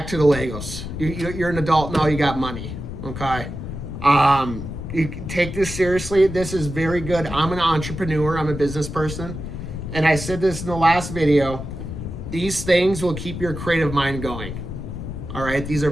to the Legos. You're an adult now, you got money, okay? You take this seriously. This is very good. I'm an entrepreneur. I'm a business person. And I said this in the last video. These things will keep your creative mind going. All right? These are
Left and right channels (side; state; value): left; noise; rumble, 8 dB below the sound